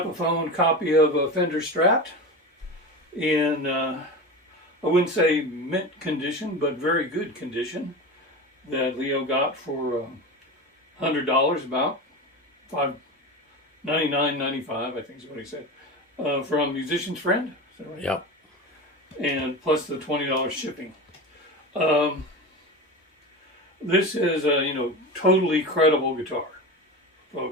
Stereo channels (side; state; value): both; normal; correlation 0.26